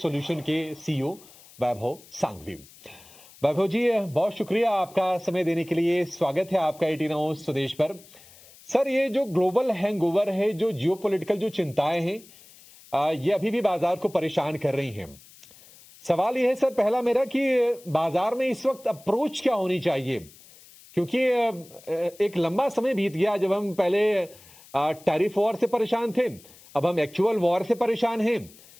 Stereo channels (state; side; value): noise; left; hiss, 23 dB below the sound